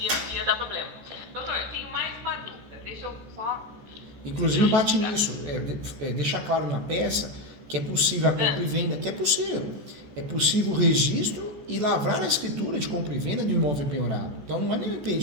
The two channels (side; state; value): left; late; 14 ms